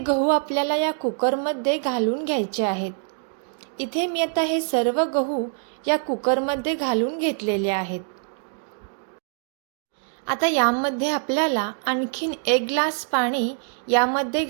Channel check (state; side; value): silent; left; 62 dB below the other